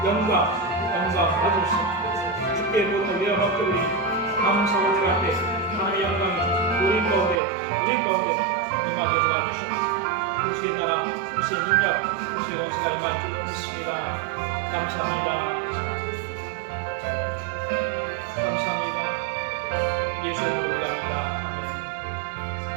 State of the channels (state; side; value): drops out; left; at 7.4 s